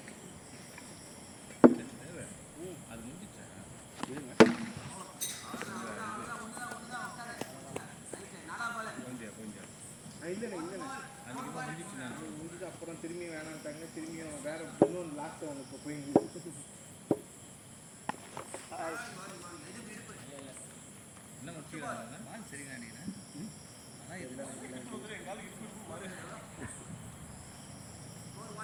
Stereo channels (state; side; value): identical; both; correlation 1.00